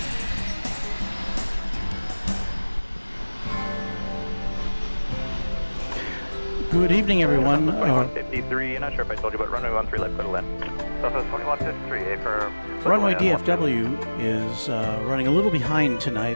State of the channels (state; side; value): inverted; both; correlation -1.00